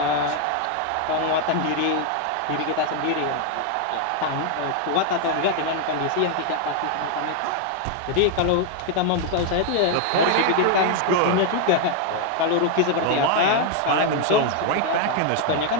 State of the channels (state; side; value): different; both; correlation 0.00